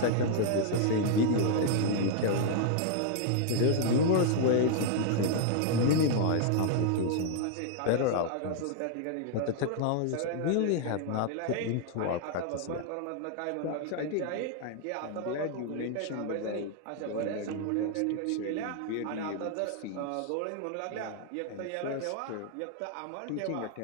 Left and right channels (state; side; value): different; both; correlation 0.00